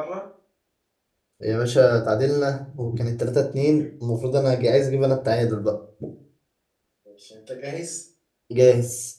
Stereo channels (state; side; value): identical; both; correlation 1.00